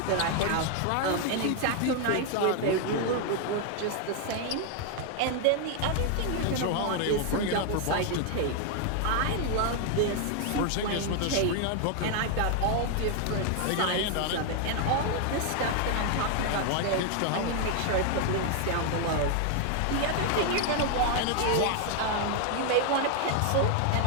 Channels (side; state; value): both; different; correlation 0.00